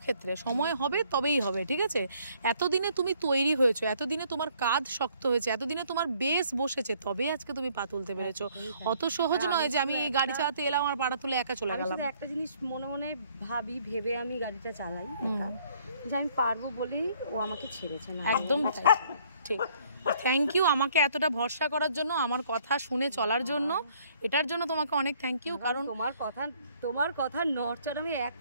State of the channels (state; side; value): inverted; both; correlation -0.62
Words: ক্ষেত্রে সময় হবে তবেই হবে। ঠিক আছে, এতদিনে তুমি তৈরি হয়েছো, এতদিনে তোমার কাঁধ শক্ত হয়েছে, এতদিনে তোমার বেস বসেছে, তবে আজকে তুমি পা তুলতে পেরেছো। অত সহজ নয় যে আমি গাড়ি চালাতে এলাম আর পাটা তুলে একা চলে গেলাম। একটা জিনিস মনে মনে ভেবে আমি গাড়িটা চালাই যে আমি পারবো বলেই ও আমাকে ছেড়েছে না। একদম ঠিক। থ্যাংক ইউ আমাকে এতটা ভরসা করার জন্য, আমার কথা শুনে চলার জন্য, এটার জন্য তোমাকে অনেক থ্যাংক ইউ। কারণ তোমার কথা নড়চড় আমি এক